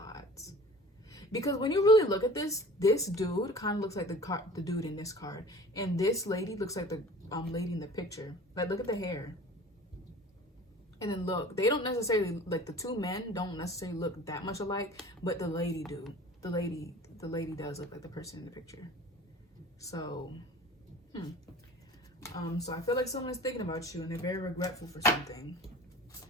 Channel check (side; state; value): both; normal; correlation 0.43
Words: Because when you really look at this dude kind of looks like the dude in this card, and this lady looks like the lady in the picture. Like, look at the hair. And then look, they don't necessarily, like, the two men don't necessarily look that much alike, but the lady do. The lady does look like the person in the picture. So, so I feel like someone is thinking about you and they're very regretful for something.